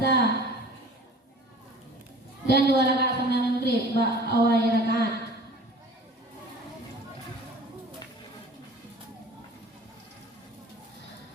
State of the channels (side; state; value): both; normal; correlation 0.44